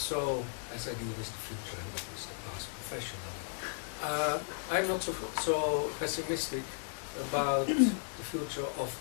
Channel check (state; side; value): silent; right; digital silence